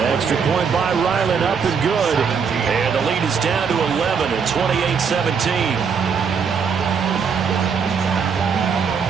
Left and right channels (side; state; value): left; quieter; 6.2 dB